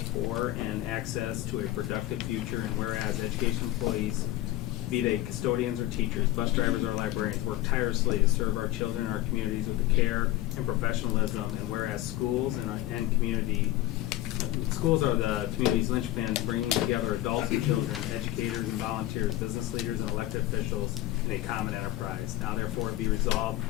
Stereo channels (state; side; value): quieter; right; 15.7 dB